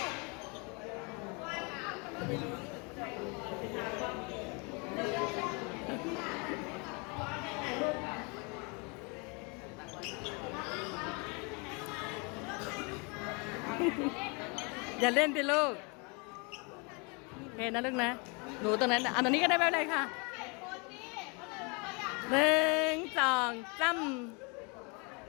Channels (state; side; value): quieter; right; 31.7 dB